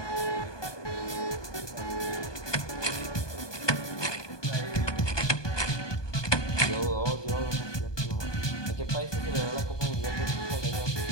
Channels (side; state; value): right; late; 1.2 ms